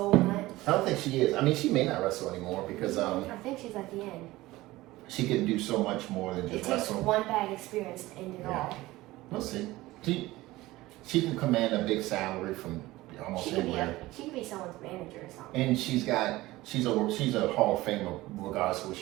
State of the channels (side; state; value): left; quieter; 18.4 dB